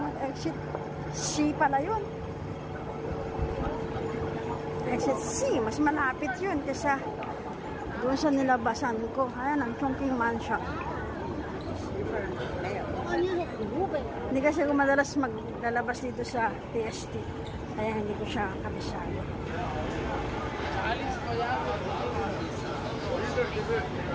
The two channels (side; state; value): both; identical; correlation 1.00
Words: exit C pala yun. Exit C, mas malapit yun kaysa doon sa nilabasan ko. Ayan, ang Chongqing Mansion. Hindi kasi ko madalas maglalabas dito sa PST. Kaya hindi ko siya kabisado.